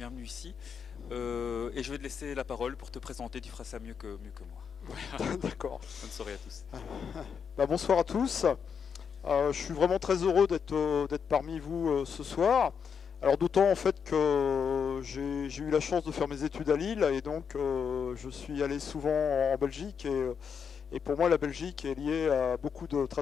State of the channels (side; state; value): right; quieter; 6.7 dB